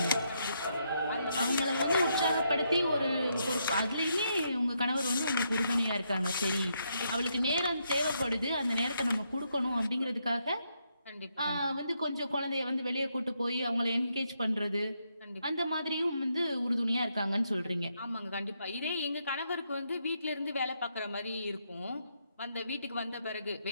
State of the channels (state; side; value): inverted; both; correlation -0.78